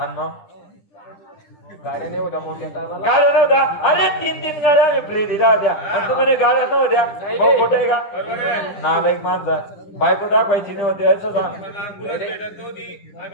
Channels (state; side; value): late; right; 10 ms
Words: मग गाड्या नाही होत्या मोठ्या टायमाला. गाड्या नव्हत्या. अरे 3 गाड्या आम्ही फ्री दिल्या होत्या आणि तुम्ही गाड्या नव्हत्या. भाऊ खोटे आहे का? नालायक माणसा बायको दाखवायची नव्हती असं सांग. भेटत नव्हती.